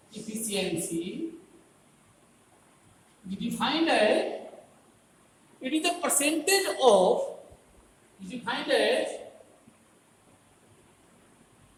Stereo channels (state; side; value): identical; both; correlation 1.00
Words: efficiency we defined as it is the percentage of defined as